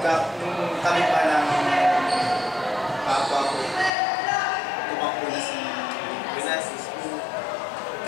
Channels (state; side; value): drops out; right; at 3.9 s